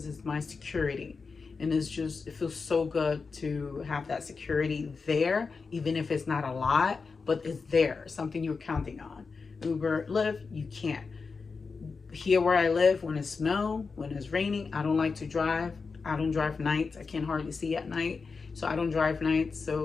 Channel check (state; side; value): quieter; right; 4.7 dB